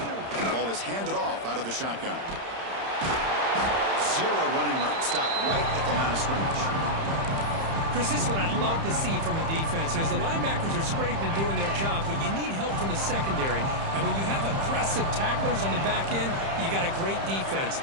Is handed off out of the shotgun. Zero running room. Stopped right at the line of scrimmage. Chris, this is what I'd love to see from a defense. As the linebackers are scraping, doing their job, but you need help from the secondary. And when you have aggressive tacklers on the back end, you got a great defense.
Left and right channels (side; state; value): left; late; 30 ms